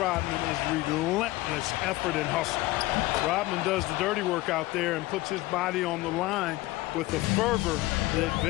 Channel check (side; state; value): right; quieter; 18.8 dB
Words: is relentless effort and hustle. Rodman does the dirty work out there and puts his body on the line with a fervor that